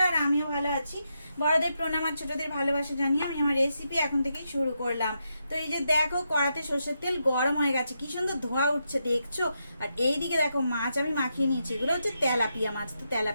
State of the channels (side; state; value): both; inverted; correlation -0.83